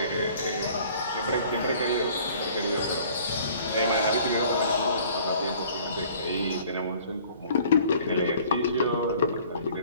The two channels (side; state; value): both; inverted; correlation -0.53